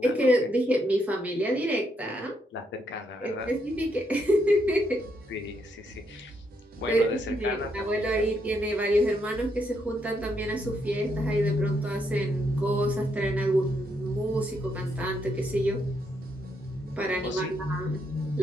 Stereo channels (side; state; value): both; normal; correlation 0.77